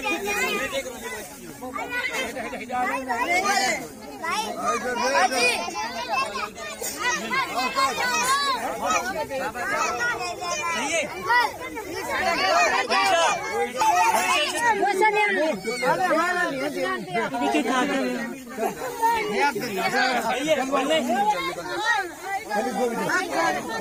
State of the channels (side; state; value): both; identical; correlation 1.00